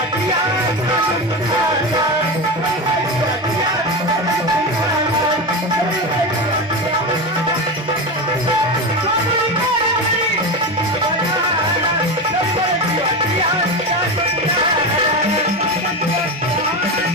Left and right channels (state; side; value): normal; both; correlation 0.20